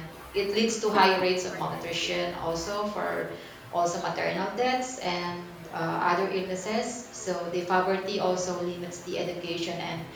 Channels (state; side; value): identical; both; correlation 1.00